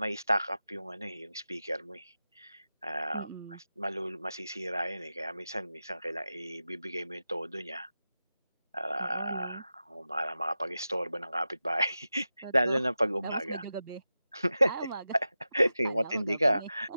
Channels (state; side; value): inverted; both; correlation -0.93